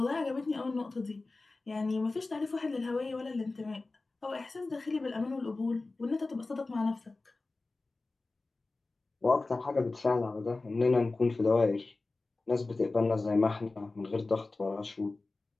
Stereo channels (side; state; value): right; quieter; 3.4 dB